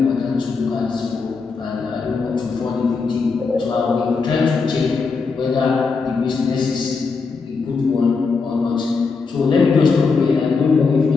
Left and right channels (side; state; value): right; quieter; 4.7 dB